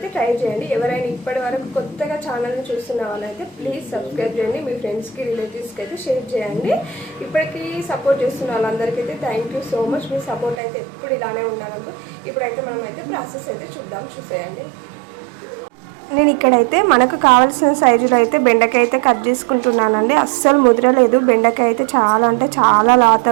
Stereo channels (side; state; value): left; drops out; at 10.6 s